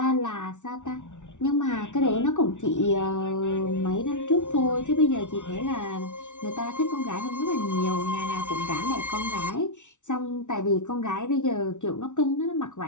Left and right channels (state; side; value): late; right; 0.85 ms